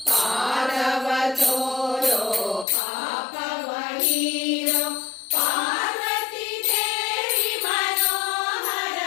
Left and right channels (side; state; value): right; drops out; at 2.7 s